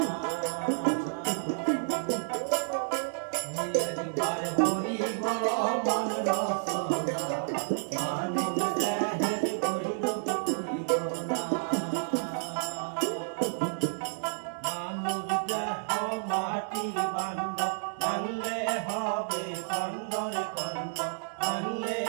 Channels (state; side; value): silent; left; digital silence